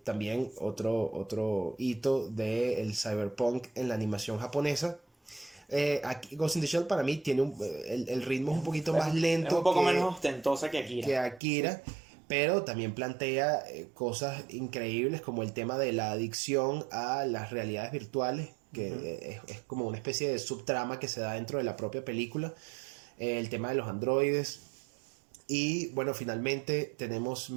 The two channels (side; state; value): left; drops out; at 11.4 s